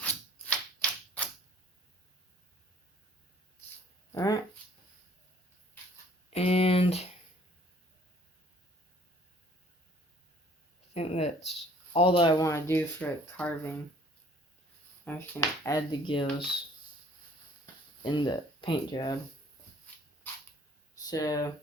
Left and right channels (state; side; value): normal; both; correlation 0.56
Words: alright. And I think that's all that I want to do for carving. I'm just going to add the gills in the paint job. So,